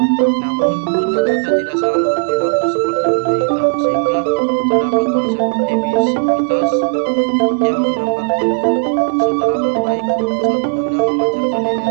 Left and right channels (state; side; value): silent; left; 69 dB below the other